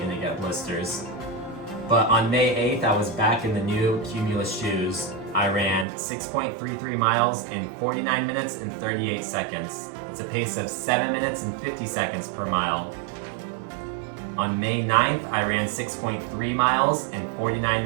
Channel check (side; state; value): left; drops out; at 5.9 s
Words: to get blisters. But on May 8th, I was back in the new Cumulus shoes. I ran 6.33 miles in 49 minutes and 38 seconds. It's a pace of 7 minutes and 50 seconds per mile. On May 9th, I ran 6.3 miles in 49